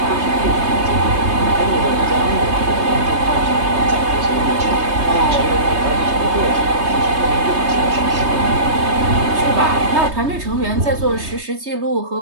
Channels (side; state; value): left; late; 3.2 ms